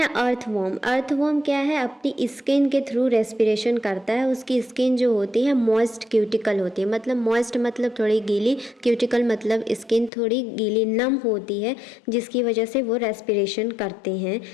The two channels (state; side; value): drops out; right; at 10.1 s